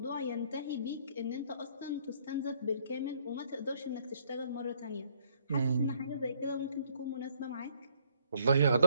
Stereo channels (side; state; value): both; inverted; correlation -0.65